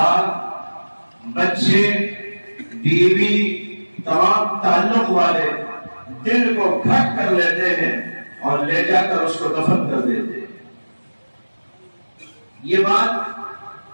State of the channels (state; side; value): inverted; both; correlation -1.00